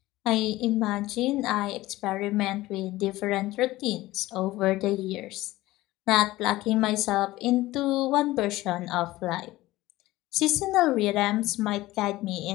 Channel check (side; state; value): right; quieter; 17.7 dB